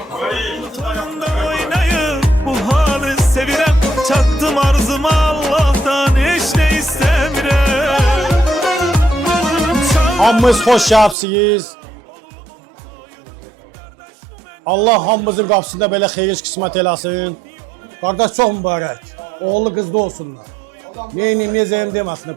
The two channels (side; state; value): left; drops out; at 11.2 s